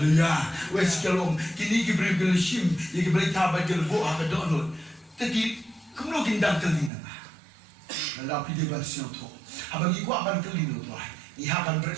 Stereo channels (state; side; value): drops out; left; at 6.9 s